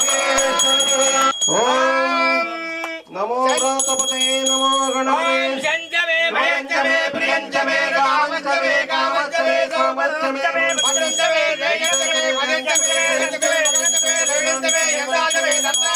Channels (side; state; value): both; identical; correlation 1.00